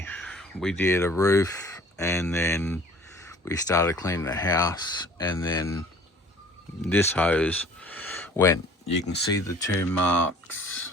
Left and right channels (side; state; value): both; normal; correlation 0.50